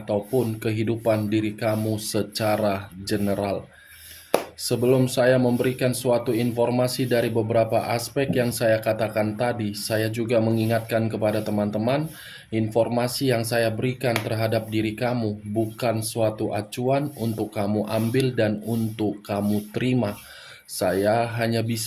kehidupan diri kamu secara general. Sebelum saya memberikan suatu informasi dari beberapa aspek yang saya katakan tadi, saya juga mengingatkan kepada teman-teman, informasi yang saya berikan terhadap diri kamu bukan suatu acuan untuk kamu ambil dan untuk kamu terima. Saya hanya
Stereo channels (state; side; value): identical; both; correlation 1.00